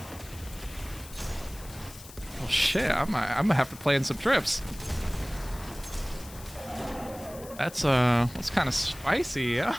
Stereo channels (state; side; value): noise; left; hiss, 18 dB below the sound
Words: Well, shit. I'm gonna have to plan some trips. That's kind of spicy. Yeah.